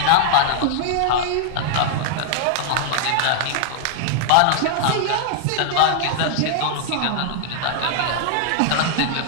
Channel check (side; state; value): both; different; correlation 0.00